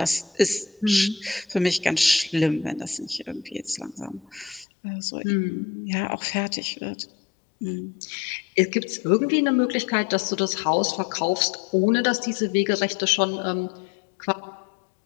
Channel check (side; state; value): right; drops out; at 4.7 s